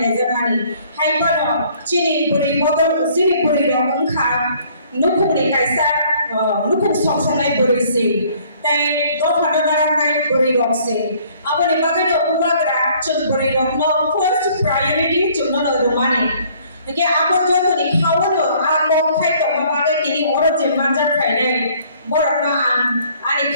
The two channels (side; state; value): both; inverted; correlation -0.59